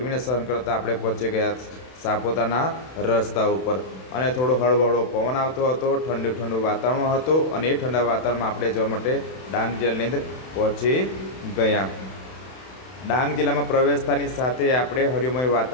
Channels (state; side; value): late; right; 31 ms